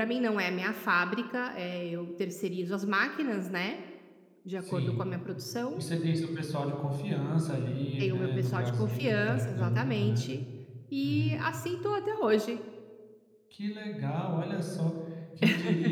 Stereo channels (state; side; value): identical; both; correlation 1.00